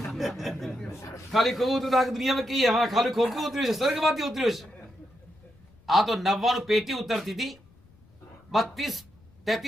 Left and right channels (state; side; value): noise; left; rumble, 28 dB below the sound